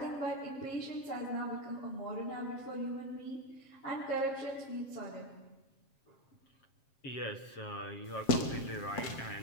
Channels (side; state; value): right; late; 7.4 ms